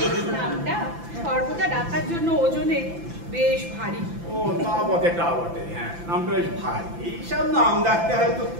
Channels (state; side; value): late; left; 5.9 ms